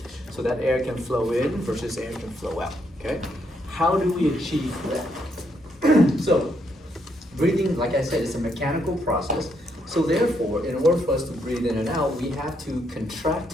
so that air can flow in versus air can flow out, okay? How do we achieve that? So, breathing, like I said, is a mechanical process. So therefore, in order for us to breathe in and out, we have to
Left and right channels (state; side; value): normal; both; correlation 0.75